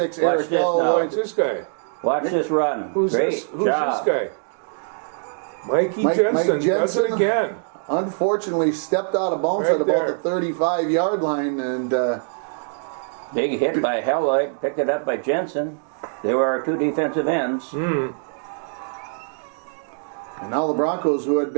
Watch Eric this Hall. now. What's this guy? Watch this run. Who's Great this? Who's job. this guy? Mikey Jensen. Mike Does Jensen. it again. Unfortunately, stepped out of bounds Right at about there. the 35-yard line. And Big hit by Helloyd. Picked it up by Jensen. They were our 2 defensive ends. and now the Broncos, who had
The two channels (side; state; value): left; silent; digital silence